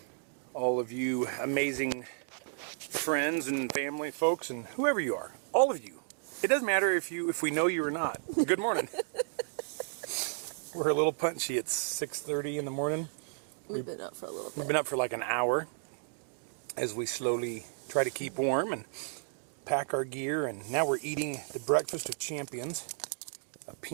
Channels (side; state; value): left; silent; digital silence